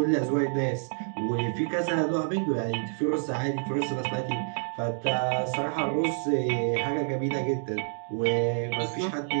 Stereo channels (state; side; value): silent; left; digital silence